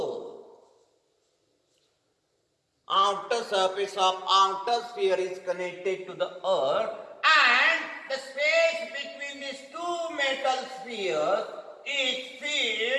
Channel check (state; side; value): identical; both; correlation 1.00